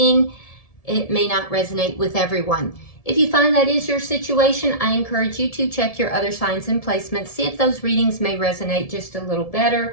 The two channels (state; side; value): late; right; 1.7 ms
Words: It may not resonate with everyone. If you find that is your situation, I encourage you to check your other signs and placements, see if those readings may resonate just a little better.